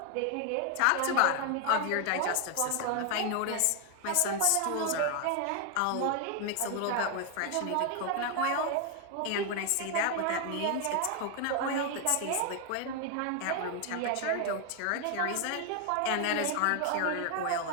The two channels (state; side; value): different; both; correlation 0.01